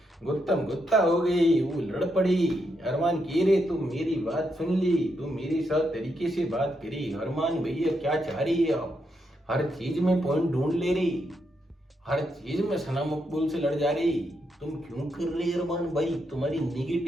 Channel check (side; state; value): both; normal; correlation 0.80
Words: गुत्तम गुत्ता हो गई, वो लड़ पड़ी। अरमान कह रहे तुम मेरी बात सुन ली, तुम मेरे साथ तरीके से बात करी। अरमान भैया क्या चाह रही है आप, हर चीज में पॉइंट ढूंढ ले रही, हर चीज में सना मकबूल से लड़ जा रही, तुम क्यों कर रहे अरमान भाई, तुम्हारी